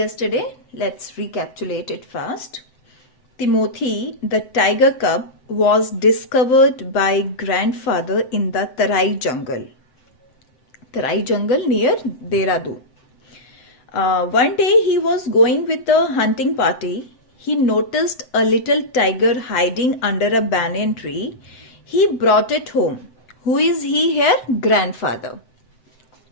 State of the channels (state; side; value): late; right; 7.8 ms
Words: let's recapitulate it fast. Timothy, the tiger cub, was discovered by grandfather in the Tarai jungle. Tarai jungle near Dehradun. One day he was going with a hunting party. He noticed a little tiger hiding under a banyan tree. He brought it home. Who is he here? Grandfather.